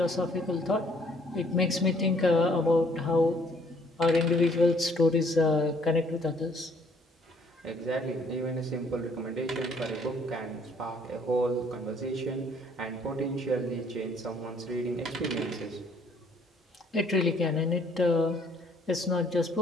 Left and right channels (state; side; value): normal; both; correlation 0.62